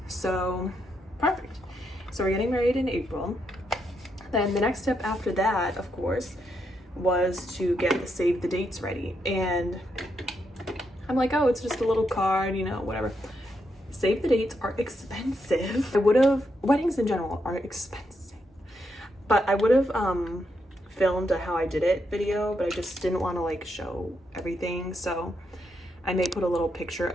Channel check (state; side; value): normal; both; correlation 0.80